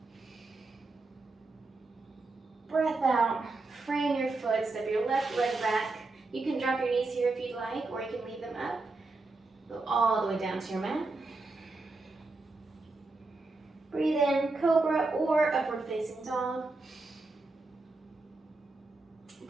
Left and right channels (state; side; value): quieter; left; 3.4 dB